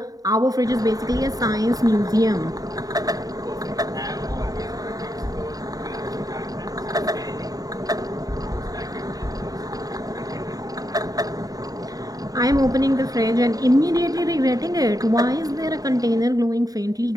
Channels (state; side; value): late; left; 0.18 ms